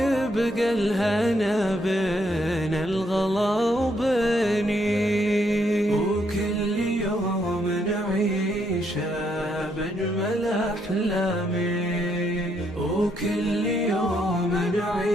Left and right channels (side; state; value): both; normal; correlation 0.74